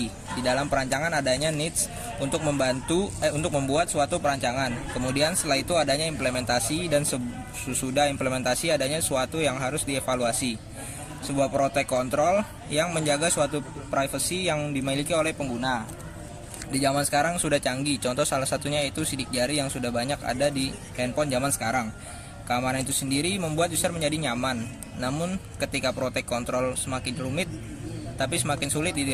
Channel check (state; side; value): identical; both; correlation 1.00